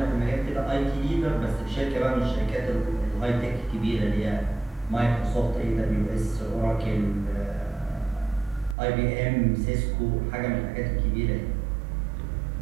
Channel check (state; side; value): drops out; left; at 8.8 s